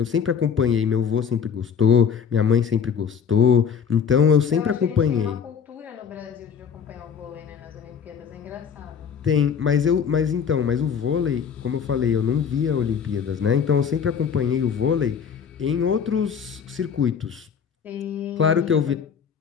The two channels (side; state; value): right; quieter; 7.1 dB